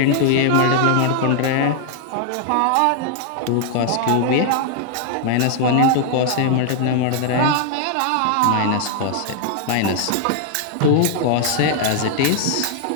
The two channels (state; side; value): different; both; correlation 0.00